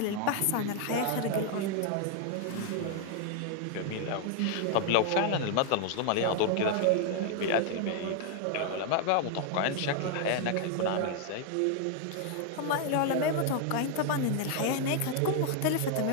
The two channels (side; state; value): both; different; correlation 0.00